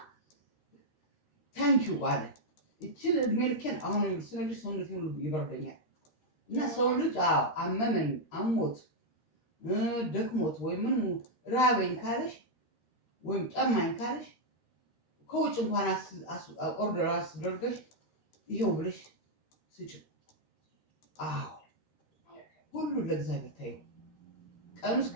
ታንኪዩ አለ። እችን እድሜ ልኬን አሁን ስነግርሽ ሰውነቴ ሁሉ ይበርደኛል። እና ሰው ልጅ አመመኝ፣ አሞት፣ ደክሞት ወይ ምን ራበኝ ካለሽ ወይም ጠማኝ ካለሽ ከውጭ እንኳን ኦርደር አስደርገሽ ይሄው ብለሽ ስጭው። ሁሉ ለእግዚአብሔር ታዩ። ቀኑ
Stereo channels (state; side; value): late; right; 13 ms